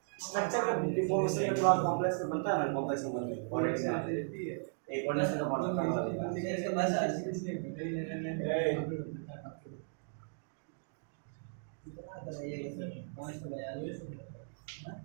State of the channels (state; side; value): silent; left; digital silence